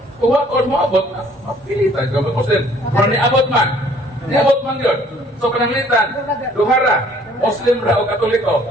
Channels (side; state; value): both; normal; correlation 0.58